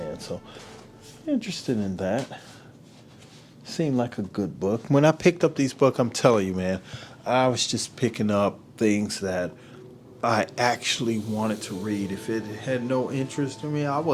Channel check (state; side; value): identical; both; correlation 1.00